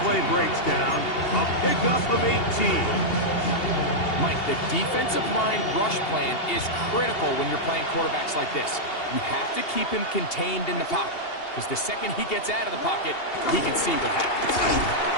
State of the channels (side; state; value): right; late; 2.8 ms